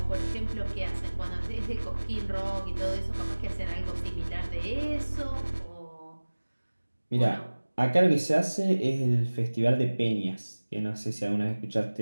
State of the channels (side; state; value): both; inverted; correlation -1.00